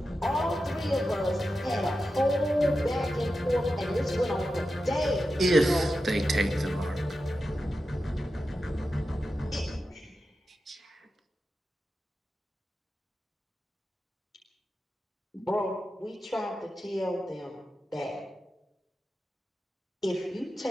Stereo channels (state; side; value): normal; both; correlation 0.91